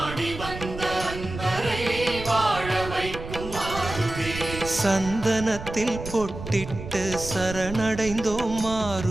வந்த அன்பரை வாழ வைக்கும் மாருதி சந்தனத்தில் பொட்டிட்டு சரணடைந்தோம்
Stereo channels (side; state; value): right; noise; rumble, 10 dB below the sound